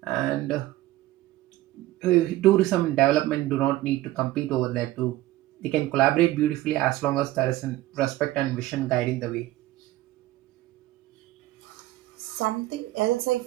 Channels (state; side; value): quieter; left; 16.6 dB